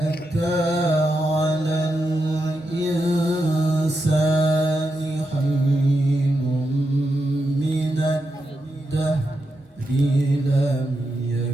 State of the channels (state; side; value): normal; both; correlation 0.86